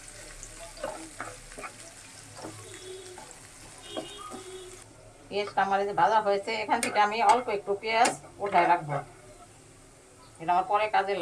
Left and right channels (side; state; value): both; identical; correlation 1.00